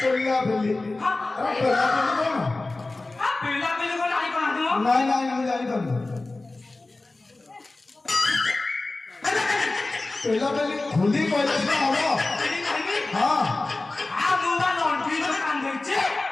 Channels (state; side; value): quieter; right; 3.2 dB